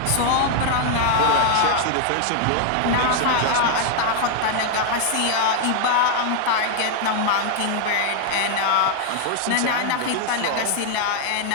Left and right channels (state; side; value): different; both; correlation 0.00